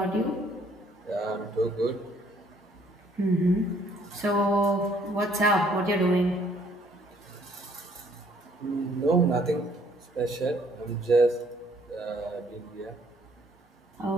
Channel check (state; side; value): normal; both; correlation 0.63